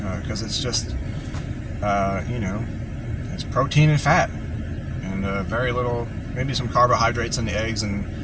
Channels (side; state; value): both; identical; correlation 1.00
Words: because it's just it's protein and fat, and very little, maybe some carbohydrates in the eggs, and